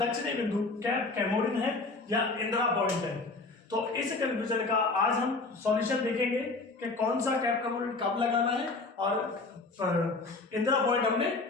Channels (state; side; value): quieter; right; 3.6 dB